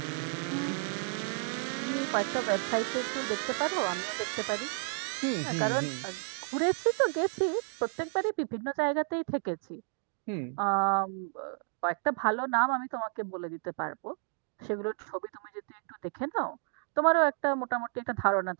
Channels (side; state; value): left; silent; 57 dB below the other